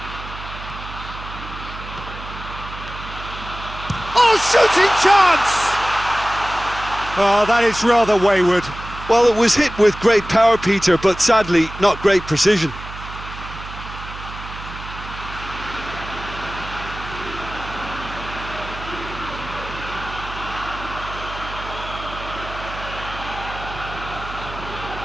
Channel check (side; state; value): right; noise; hum, 12 dB below the sound